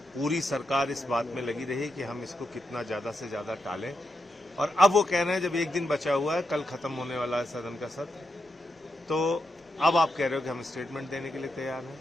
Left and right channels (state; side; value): normal; both; correlation 0.85